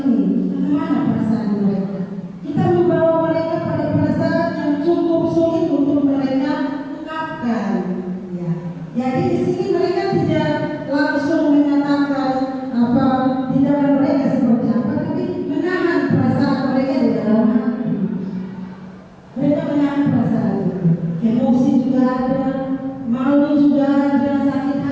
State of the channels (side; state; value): both; identical; correlation 1.00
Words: bagaimana perasaan mereka? Kita membawa mereka pada perasaan yang cukup sulit untuk mereka ungkapkan. Ya. Jadi di sini mereka tidak langsung menyatakan apa tindakan mereka seperti apa, tapi menahan perasaan mereka di dalam hati. Mereka menahan perasaan itu. Emosi juga ada, malu juga ada, sakit